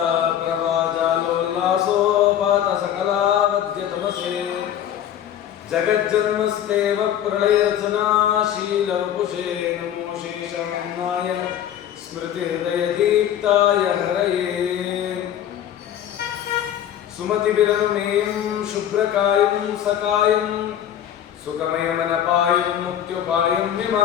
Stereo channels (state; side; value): quieter; right; 10.4 dB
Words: प्रभाजालोल्लासोपात सकला वद्य तमसे जगज्जन्मस्तेव प्रलयरचनाशील वपुषे नमो शेषान्नाय स्मृति हृदय दीप्ताय हरये सुमति विरनुमेयं शुभ्रकायं सकायं सुखमयमनपायं मुक्त्युपायं